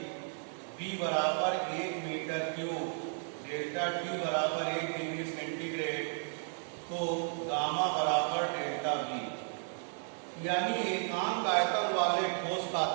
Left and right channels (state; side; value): silent; left; 55 dB below the other